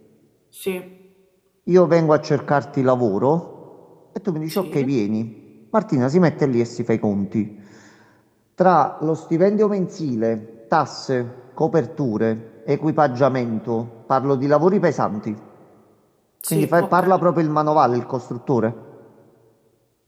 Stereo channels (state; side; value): identical; both; correlation 1.00